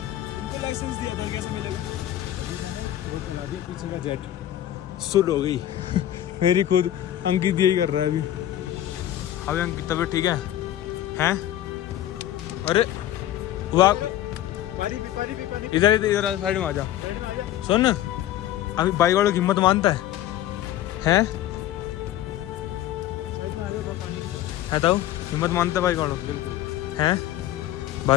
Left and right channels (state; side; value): quieter; right; 12.8 dB